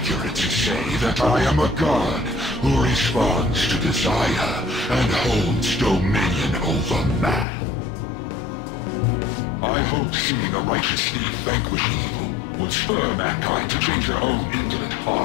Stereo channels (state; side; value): drops out; right; at 7.5 s